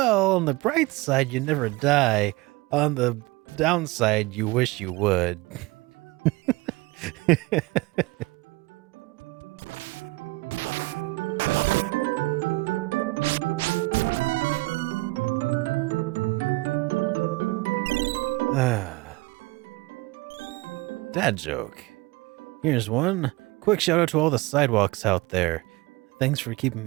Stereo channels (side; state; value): left; quieter; 22.4 dB